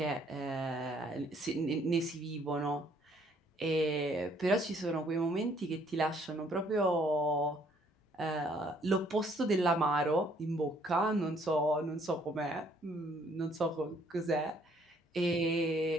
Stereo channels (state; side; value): normal; both; correlation 0.64